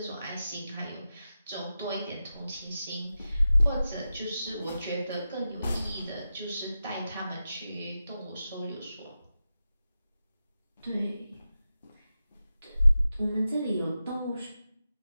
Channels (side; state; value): both; inverted; correlation -0.91